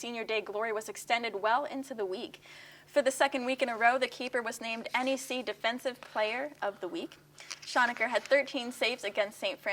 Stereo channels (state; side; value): identical; both; correlation 1.00